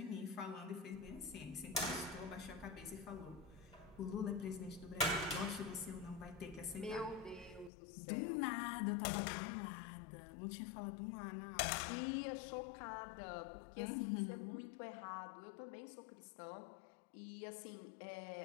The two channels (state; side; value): drops out; right; at 7.7 s